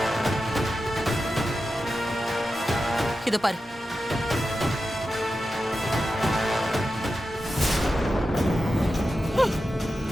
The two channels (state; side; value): normal; both; correlation 0.91